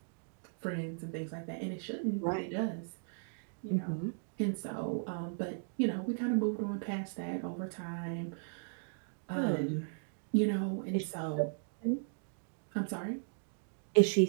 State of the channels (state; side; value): silent; left; digital silence